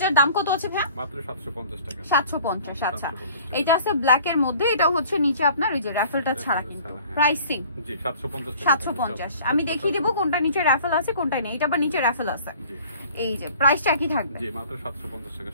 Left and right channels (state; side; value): inverted; both; correlation -0.50